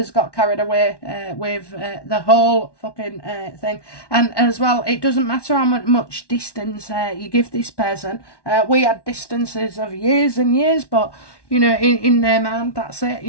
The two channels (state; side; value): late; right; 1.1 ms